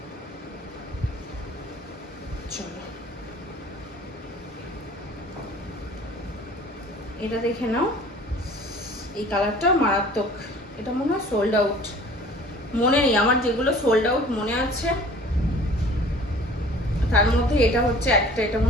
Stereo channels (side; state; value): both; normal; correlation 0.48